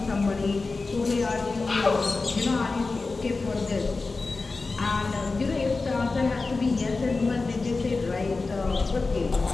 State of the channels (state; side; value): quieter; right; 3.8 dB